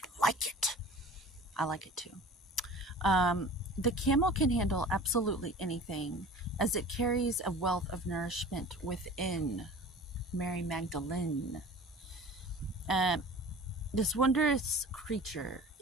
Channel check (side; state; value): both; normal; correlation 0.41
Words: like it. I like it too. The camel can handle absolutely anything as it carries a wealth of nourishment within. Mary Magdalene. Um, This wondrous creature